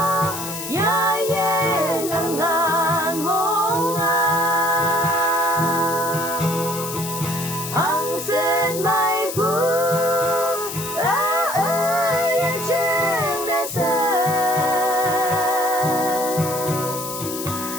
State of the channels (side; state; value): left; noise; hiss, 7 dB below the sound